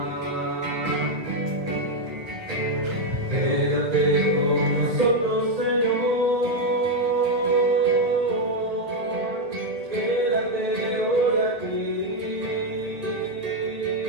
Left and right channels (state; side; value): late; left; 1.3 ms